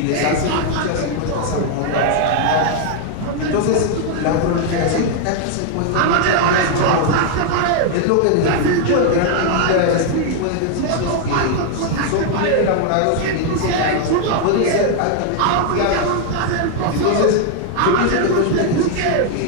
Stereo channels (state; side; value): different; both; correlation 0.00